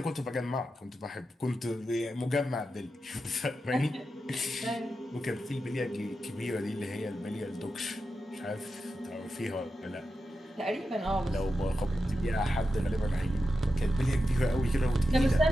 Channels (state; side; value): normal; both; correlation 0.90